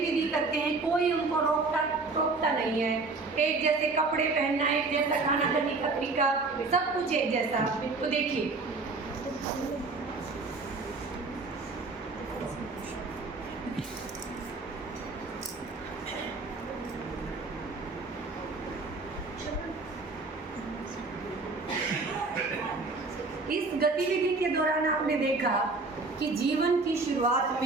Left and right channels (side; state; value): left; quieter; 3.7 dB